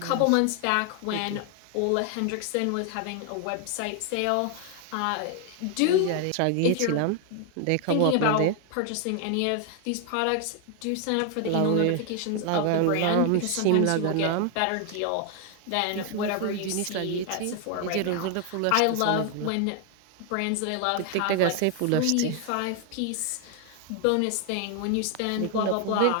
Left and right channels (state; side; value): different; both; correlation 0.00